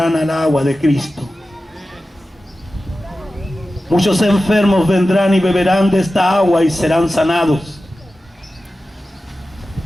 al agua de Cristo. Muchos enfermos vendrán y beberán de esta agua y serán sanados.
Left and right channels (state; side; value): normal; both; correlation 0.94